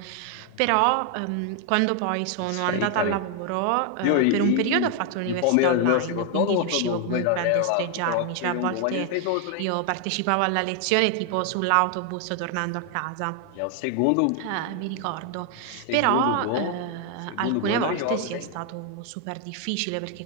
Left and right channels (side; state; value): both; different; correlation 0.00